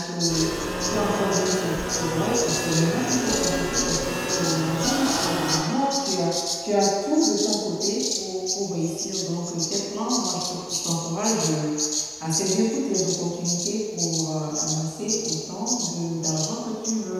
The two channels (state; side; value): identical; both; correlation 1.00